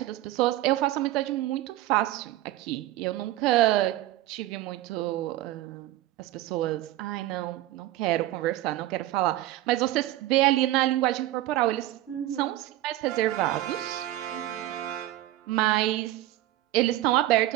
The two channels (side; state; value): left; quieter; 15.4 dB